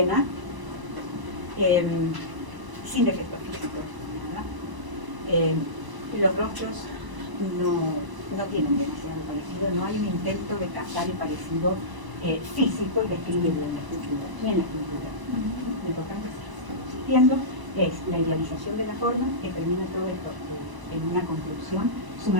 sin defectos físicos, nada. Los rostros no tienen demasiado parecido, no hay un intento de captar el parecido físico y describirlo en la escultura, ni en la escultura. Lo importante existiendo es la idealización de la forma que termina todo esto en una conclusión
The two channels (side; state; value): left; late; 1.0 ms